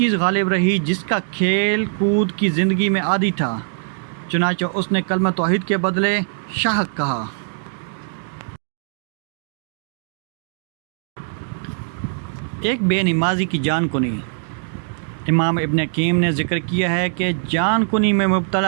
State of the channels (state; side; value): silent; left; digital silence